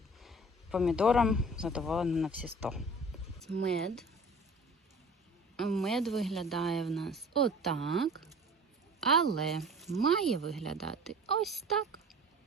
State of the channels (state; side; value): normal; both; correlation 0.44